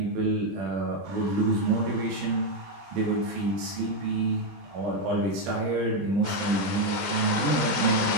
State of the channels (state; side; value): late; left; 20 ms